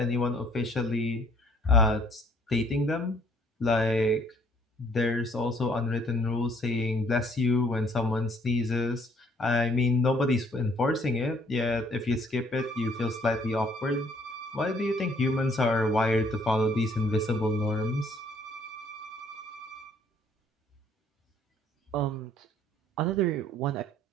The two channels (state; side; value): normal; both; correlation 0.61